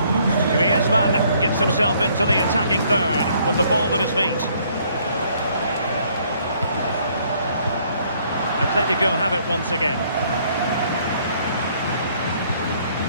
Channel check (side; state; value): both; inverted; correlation -0.64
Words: Griezmann gets himself into the attacking third with the ball at his feet. Atletico have it once again.